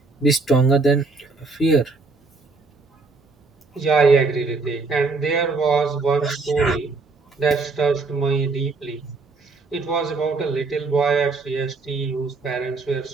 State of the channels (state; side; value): quieter; left; 3.9 dB